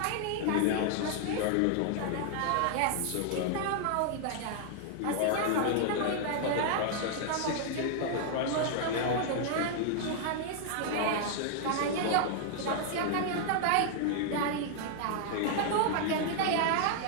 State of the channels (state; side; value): different; both; correlation 0.00